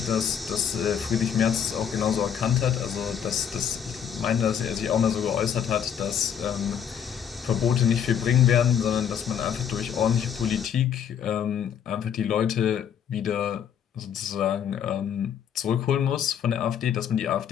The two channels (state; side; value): quieter; right; 8.4 dB